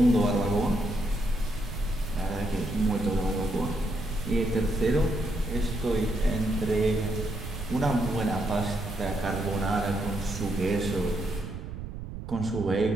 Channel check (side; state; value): right; noise; rumble, 8 dB below the sound